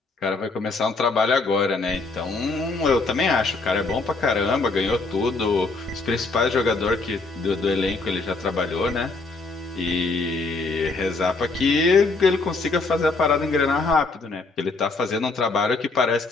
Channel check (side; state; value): right; quieter; 3.7 dB